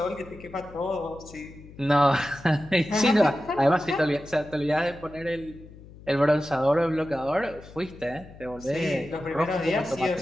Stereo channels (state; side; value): noise; left; hum, 19 dB below the sound